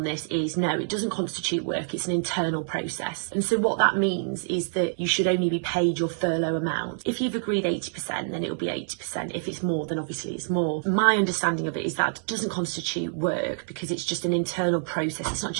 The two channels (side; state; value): left; silent; 60 dB below the other